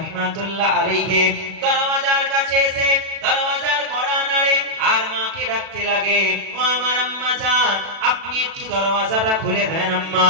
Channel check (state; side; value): late; left; 37 ms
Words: আলাইহি দরওয়াজার কাছে এসে দরওয়াজার কড়া নাড়ে আর মাকে ডাকতে লাগে, ও আমার আম্মা জান, আপনি একটু দরওয়াজাটা খুলে দেন আম্মা,